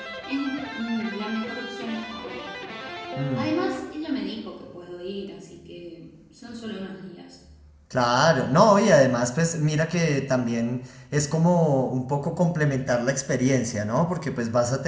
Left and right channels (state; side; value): identical; both; correlation 1.00